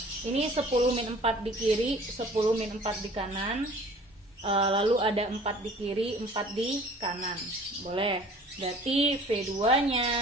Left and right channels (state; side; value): normal; both; correlation 0.49